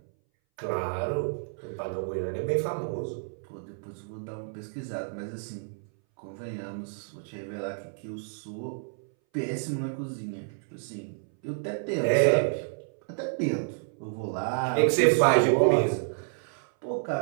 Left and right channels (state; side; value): silent; left; 58 dB below the other